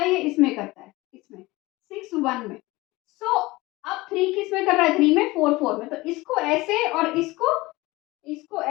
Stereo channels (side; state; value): right; quieter; 20.6 dB